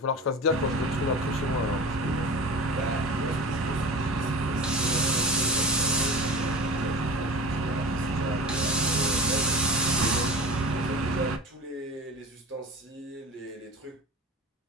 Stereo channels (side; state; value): both; normal; correlation 0.34